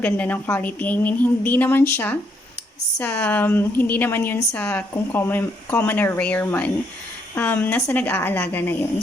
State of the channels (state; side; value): normal; both; correlation 0.73